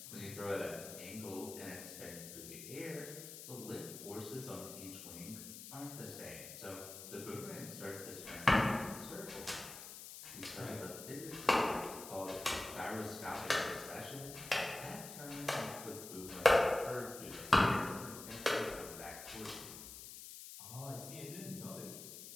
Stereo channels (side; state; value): left; noise; hiss, 11 dB below the sound